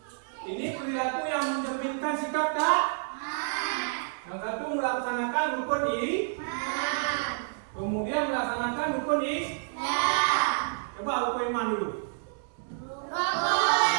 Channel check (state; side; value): silent; left; 58 dB below the other